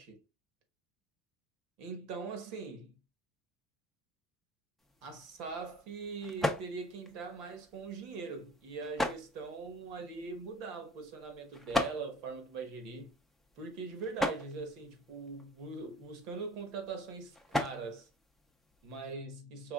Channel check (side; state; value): both; normal; correlation 0.49